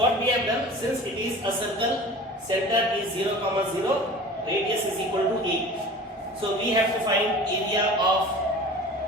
we have done, since it is a circle, center is 0, 0, radius is equal to a. So we have to find area of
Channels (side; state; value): both; normal; correlation 0.40